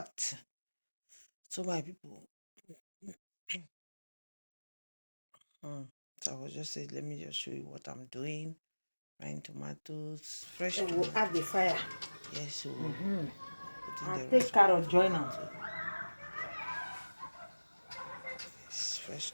So my people, so I was just saying, let me just show you what I'm doing. Frying tomatoes, fresh Then we'll tomato. add the fire. Yes, so putting And the take rest of carrot the join them. tomato. Yes, fresh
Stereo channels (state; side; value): inverted; both; correlation -1.00